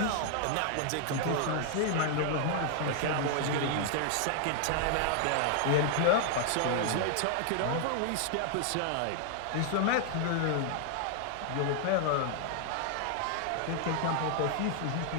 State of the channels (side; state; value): both; different; correlation 0.00